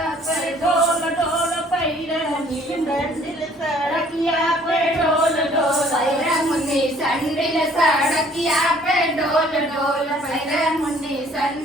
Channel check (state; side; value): normal; both; correlation 0.57